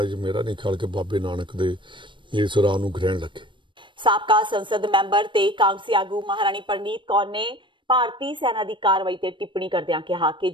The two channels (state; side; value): late; left; 0.24 ms